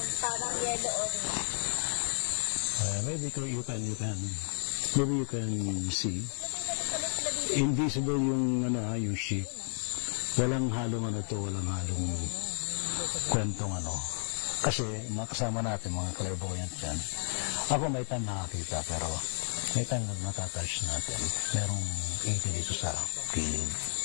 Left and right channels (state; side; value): silent; right; 55 dB below the other